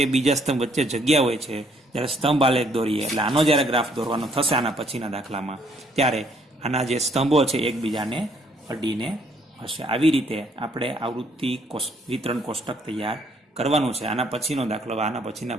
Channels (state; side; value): normal; both; correlation 0.66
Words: બીજા સ્તંભ વચ્ચે જગ્યા હોય છે. જ્યારે સ્તંભ આલેખ દોરીએ એટલે આનો જ્યારે ગ્રાફ દોરવાનો થશે આના પછીના દાખલામાં, ત્યારે આના જે સ્તંભો છે એકબીજાને અડીને હશે. આવી રીતે આપણે આવૃત્તિ વિતરણ કોષ્ટક તૈયાર કરવાનું છે. આના પછીનો દાખલો આના પછીના